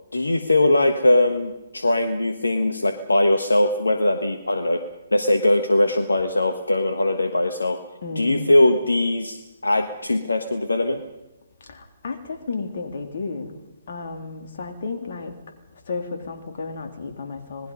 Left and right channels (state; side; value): inverted; both; correlation -0.90